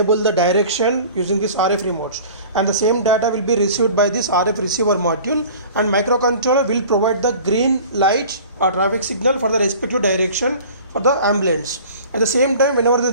the direction using this RF remotes, and the same data will be received by this RF receiver module, and microcontroller will provide the green light or traffic signal for the respective direction for the ambulance. At the same time, whenever the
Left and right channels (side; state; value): both; inverted; correlation -0.43